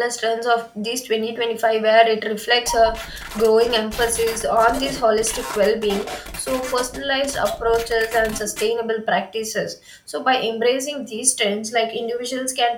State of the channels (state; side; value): identical; both; correlation 1.00